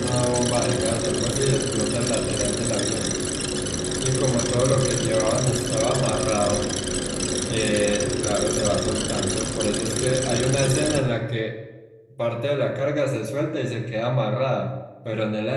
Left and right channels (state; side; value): identical; both; correlation 1.00